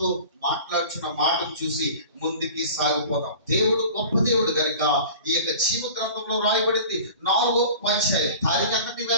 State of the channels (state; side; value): inverted; both; correlation -0.41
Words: మాట్లాడుచున్న మాటను చూసి ముందుకి సాగిపోతాం. దేవుడు గొప్ప దేవుడు కనుక ఈ యొక్క జీవ గ్రంథంలో రాయబడింది 4వ అధ్యాయం. తారీఖు ఎంతటి